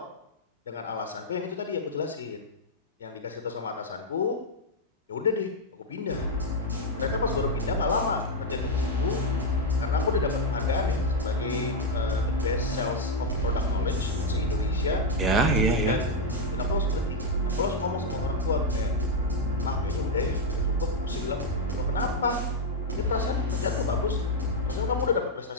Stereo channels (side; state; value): both; normal; correlation 0.00